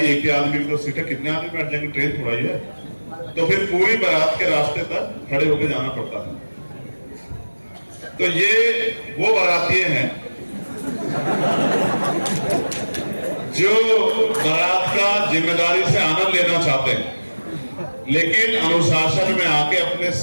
एक ही आदमी की तो सीट है, कितने आदमी बैठ जाएंगे, ट्रेन थोड़ा ही है। तो फिर पूरी बारात के रास्ते तक खड़े होकर जाना पड़ता था। तो ये वो बाराती हैं जो बारात का जिम्मेदारी से आनंद लेना चाहते हैं, लेकिन अनुशासन में आके अपने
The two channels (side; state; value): both; inverted; correlation -1.00